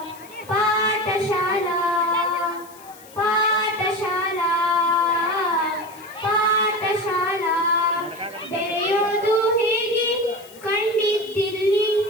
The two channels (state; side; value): noise; left; hiss, 22 dB below the sound